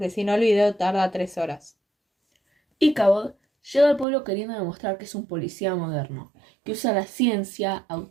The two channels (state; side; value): drops out; left; at 4.0 s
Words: si no el video tarda 3 horas. Ichabod llega al pueblo queriendo demostrar que es un policía moderno, que usa la ciencia,